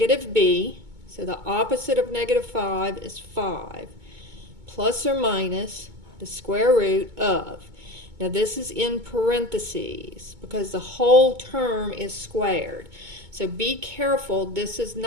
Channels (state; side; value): late; left; 2.2 ms